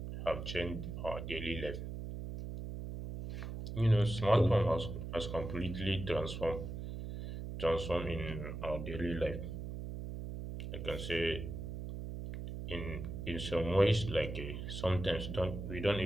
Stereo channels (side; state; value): right; noise; hum, 6 dB below the sound